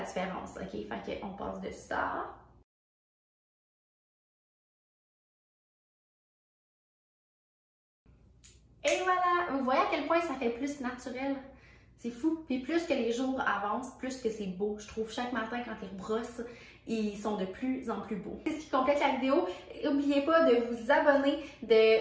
différence. OK, fait qu'on passe de ça. Et voilà! Vous voyez à quel point ça fait plus naturel? C'est fou. Puis plus que les jours avancent, plus que c'est beau. Je trouve chaque matin quand ils rebrossent, ils sont de plus en plus beaux. C'est ce qui complète la vidéo. N'oubliez pas de vous abonner,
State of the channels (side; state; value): both; identical; correlation 1.00